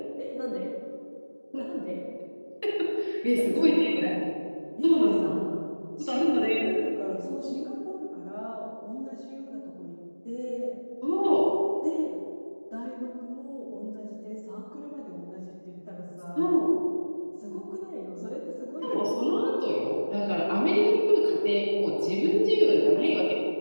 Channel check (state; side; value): inverted; both; correlation -1.00